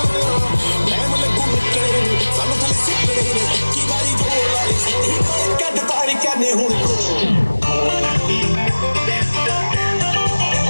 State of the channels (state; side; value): inverted; both; correlation -1.00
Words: टाइम लगू मिटने, सानू थले सिटने, इक्की बारी जो लागे शक्तियां. कद तारी करने हुन